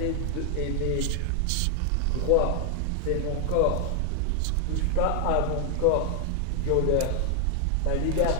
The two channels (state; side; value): different; both; correlation 0.00